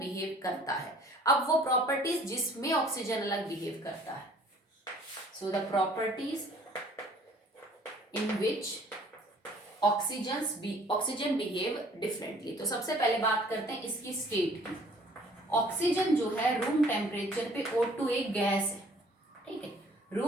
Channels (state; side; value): normal; both; correlation 0.55